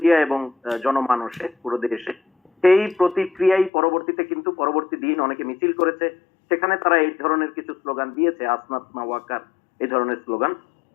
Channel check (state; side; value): drops out; right; at 3.7 s